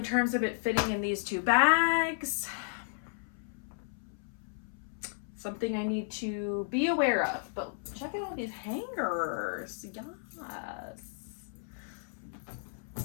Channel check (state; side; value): silent; right; 55 dB below the other